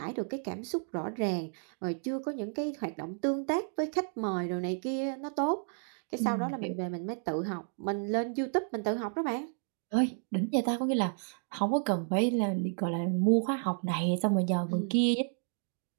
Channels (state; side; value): silent; left; 56 dB below the other